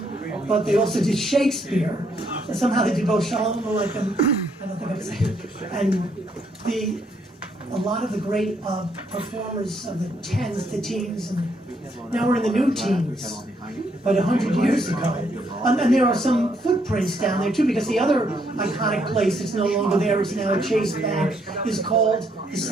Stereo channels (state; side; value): normal; both; correlation 0.72